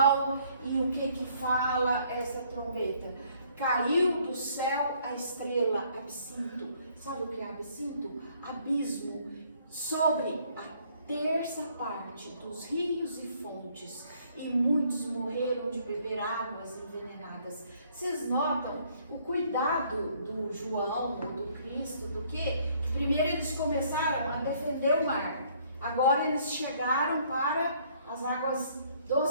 E o que fala essa trombeta? Caiu do céu a estrela, absinto. Sabe o que é absinto? Abismo. Sobre a terça parte dos rios e fontes. E muitos morreram de beber águas envenenadas. Vocês notam o cuidado do João, do Cristo, do que? Primeiro eles começaram a defender o mar. Agora eles chegaram para as águas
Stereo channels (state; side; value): inverted; both; correlation -0.63